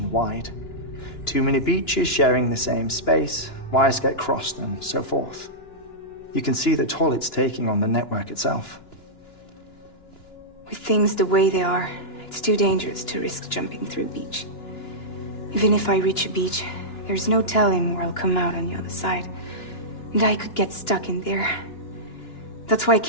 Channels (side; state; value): right; late; 2.9 ms